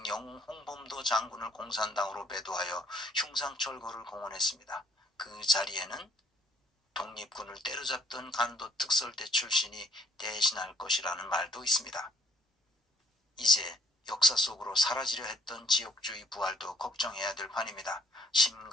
영웅 홍범도 장군을 공산당으로 매도하여 흉상철거를 공언했습니다. 그 자리에는 독립군을 때려잡던 간도 특설대 출신이 대신할 것이라는 말도 있습니다. 이제 역사 속으로 사라지려 했던 지역주의 부활도 걱정해야 될 판입니다.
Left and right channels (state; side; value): normal; both; correlation 0.62